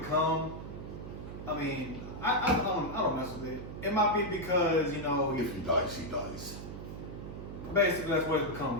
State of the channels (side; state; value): right; noise; hum, 9 dB below the sound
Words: I mean, I don't mess with it. It might be because, you know, If he dies, he dies. basically that's what it's